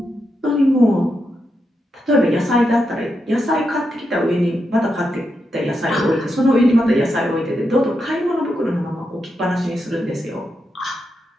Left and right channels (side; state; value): both; normal; correlation 0.85